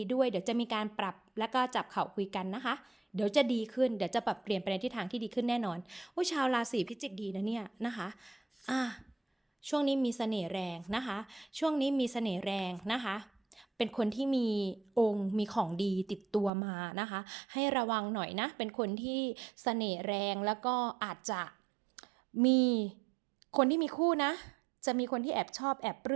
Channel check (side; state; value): left; drops out; at 16.5 s